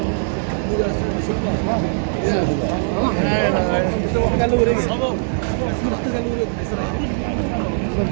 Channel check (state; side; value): silent; left; digital silence